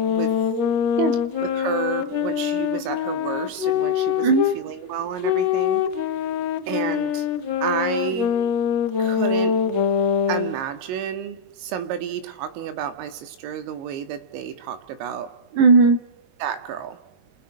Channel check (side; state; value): left; late; 22 ms